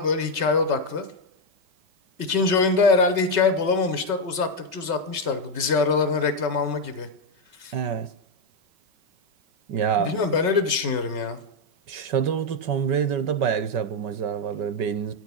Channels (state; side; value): late; left; 5.3 ms